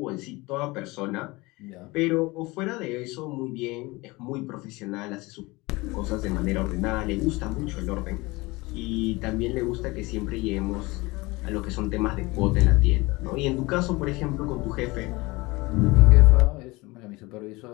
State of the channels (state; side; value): quieter; right; 22.9 dB